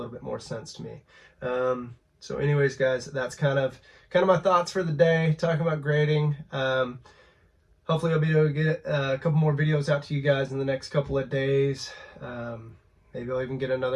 bit more sense to me. So anyways, guys, that's kind of my thoughts for the day, talking about grading. Hopefully I'll be able to get a couple more videos out to you guys in the next couple of days. Maybe I'll even get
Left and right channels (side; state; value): both; identical; correlation 1.00